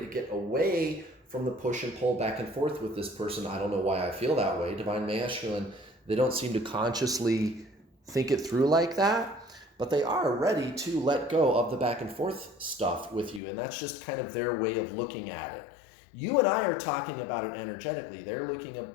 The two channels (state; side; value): drops out; right; at 13.4 s